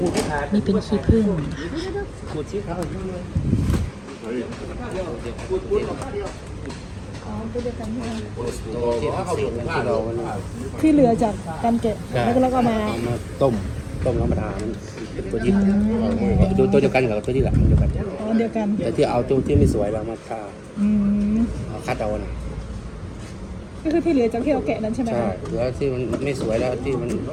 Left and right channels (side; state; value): both; identical; correlation 1.00